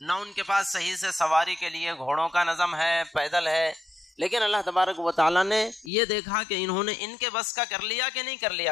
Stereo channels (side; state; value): right; drops out; at 5.9 s